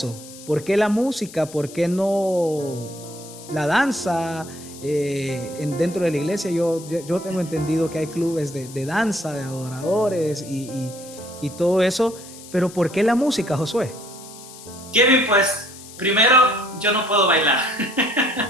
¿por qué la música? ¿Por qué no la danza? Dentro de la iglesia yo tengo entendido que hay clubes de danza, de adoradores y todo eso. Pero ¿por qué la música, Josué? Kevin, pues primero yo no puedo bailar.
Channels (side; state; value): left; noise; hiss, 17 dB below the sound